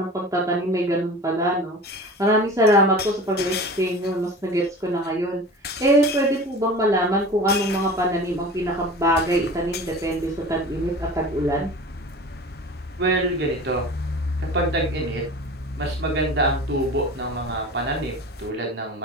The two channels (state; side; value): normal; both; correlation 0.37